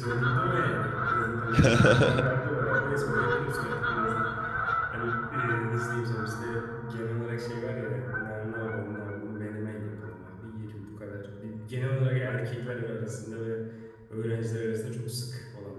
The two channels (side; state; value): both; identical; correlation 1.00